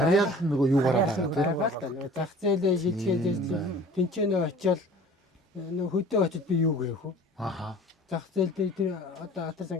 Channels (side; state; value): both; normal; correlation 0.46